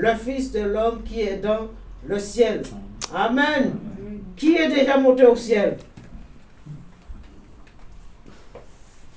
Fils de l'homme qui est dans le ciel. Amen. Qui est déjà monté au ciel?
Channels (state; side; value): identical; both; correlation 1.00